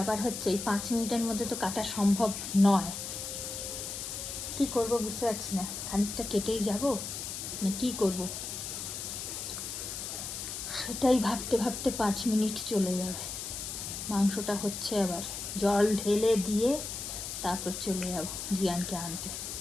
হচ্ছে এই 5 মিনিটের মধ্যে তো কাটা সম্ভব নয়। কি করব বুঝতে পারছি না, খানিকটা কেটেই যাব না কি করব, সেটাই ভাবতে ভাবতে 5 মিনিট চলে যাবে। মাংসটা হচ্ছে, আবার জল ঢেলে দিয়ে তারপর চলে যাব জিয়ানকে আনতে।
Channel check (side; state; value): left; noise; hiss, 6 dB below the sound